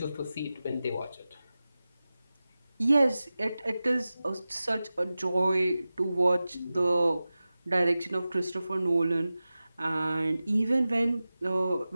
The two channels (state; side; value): inverted; both; correlation -0.95